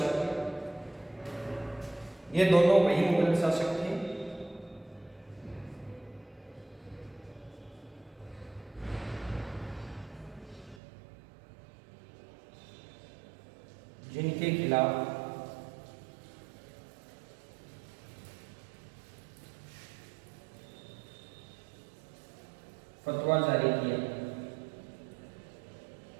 ये दोनों वही मुगल शासक थे जिनके खिलाफ फतवा जारी किया।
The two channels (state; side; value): drops out; left; at 10.8 s